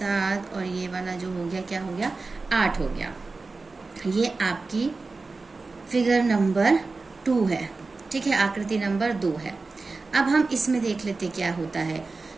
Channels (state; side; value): quieter; left; 3.8 dB